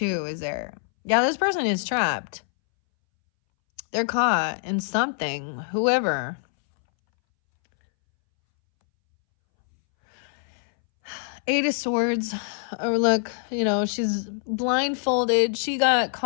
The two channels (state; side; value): silent; right; 62 dB below the other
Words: is there. Yeah, this person is trapped. They're caught in something. Whoever. Eight of Swords. Or look, you know, she's blindfolded. She got